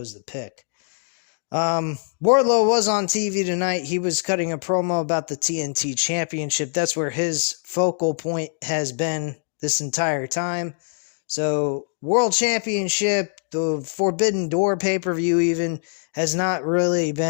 the pick. Wardlow was on TV tonight. He was cutting a promo about the TNT Championship. That's where his focal point has been this entire time. So, World Championship, the Forbidden Door pay-per-view even, has not really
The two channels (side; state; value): right; silent; digital silence